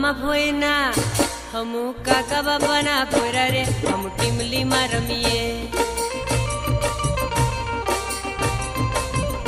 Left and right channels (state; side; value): identical; both; correlation 1.00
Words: भोयना हमू काका बापाना पोरा रे हम टीमली में रमीए